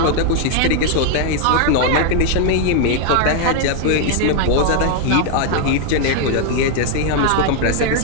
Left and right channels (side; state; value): both; different; correlation 0.00